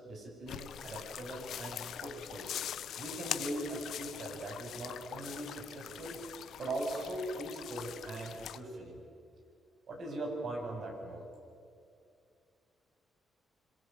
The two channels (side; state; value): both; normal; correlation 0.70